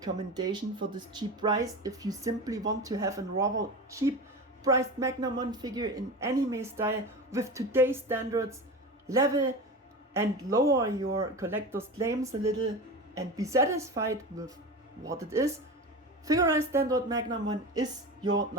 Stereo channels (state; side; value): normal; both; correlation 0.28